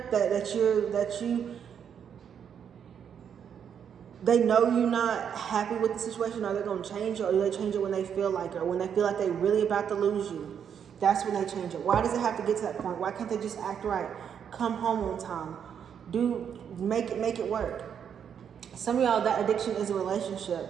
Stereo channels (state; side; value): quieter; left; 8.0 dB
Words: they know you're not happy with the situation? Are they going to change it, or do they change it when they feel like it, or when they feel like they're really about to lose you? That's when they change it. Why does it have to get to that point? Why can't they just act right? Come home on time. Make it work. Some of y'all, that addiction is a